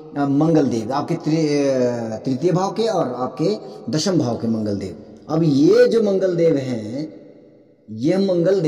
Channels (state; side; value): identical; both; correlation 1.00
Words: मंगल देव, आपके तृतीय भाव के और आपके दशम भाव के मंगल देव। अब ये जो मंगल देव हैं, ये मंगल